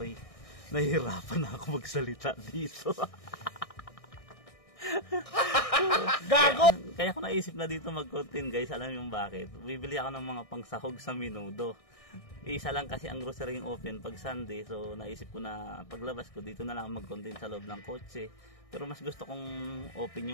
nahihirapan na ako magsalita dito. Gago! Kaya ako naisip na dito mag-content guys. Alam yung bakit? Bibili ako ng mga pangsahog sa Minudo. Isa lang kasi ang grocery open pag Sunday. So naisip ko na paglabas ko dito na lang mag-content sa loob ng kotse. Pero mas gusto kong open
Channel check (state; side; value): late; right; 1.6 ms